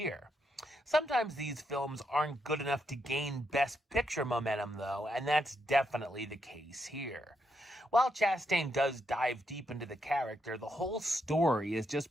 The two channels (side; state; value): both; normal; correlation 0.80